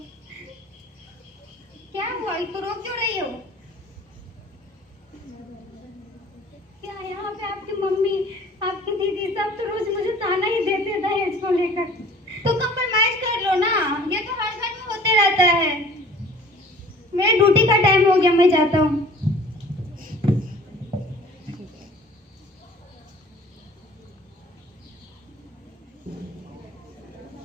क्या हुआ? तो रो क्यों रही हो? क्या यहाँ पे आपकी मम्मी, आपकी दीदी सब तो रोज मुझे ताना ही देते दहेज को लेकर। तो कंप्रोमाइज कर लो ना, ये तो हर घर में होते रहता है। मेरी ड्यूटी का टाइम हो गया, मैं जाता हूँ।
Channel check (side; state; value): both; normal; correlation 0.48